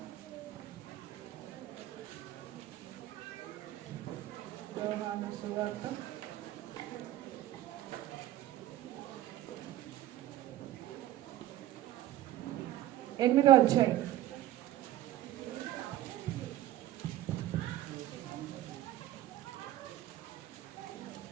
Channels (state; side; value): quieter; left; 13.9 dB